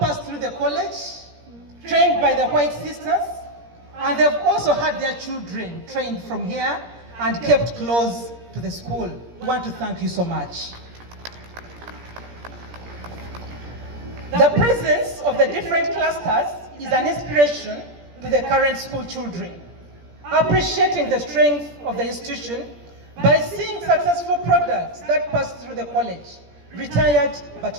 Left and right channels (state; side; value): late; left; 17 ms